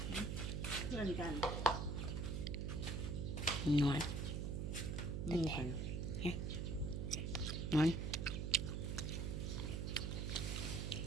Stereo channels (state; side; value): noise; right; hum, 1 dB below the sound